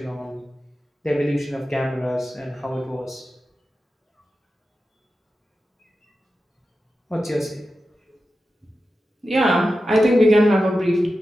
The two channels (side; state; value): both; normal; correlation 0.92